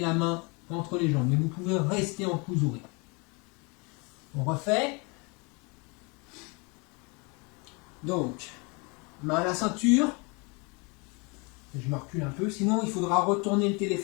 main entre les jambes, mais vous pouvez rester en Kuzure. On refait. Donc, main à la ceinture. Je me recule un peu, sinon il faudra retourner le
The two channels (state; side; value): quieter; right; 30.2 dB